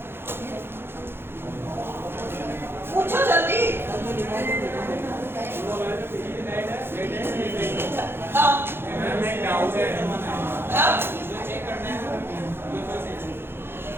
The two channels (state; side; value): late; left; 0.11 ms